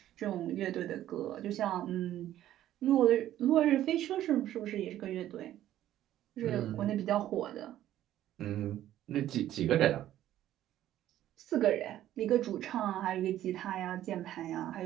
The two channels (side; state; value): left; quieter; 12.7 dB